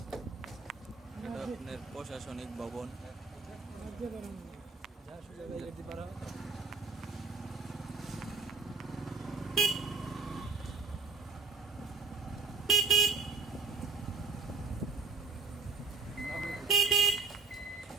আপনার প্রশাসনিক ভবন।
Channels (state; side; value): quieter; left; 4.5 dB